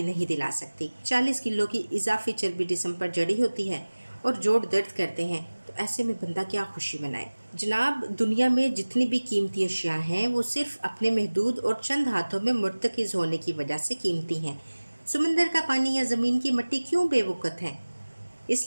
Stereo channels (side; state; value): both; inverted; correlation -1.00